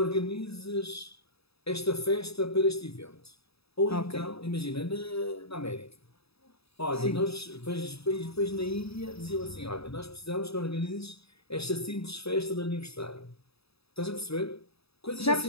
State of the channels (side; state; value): right; late; 0.78 ms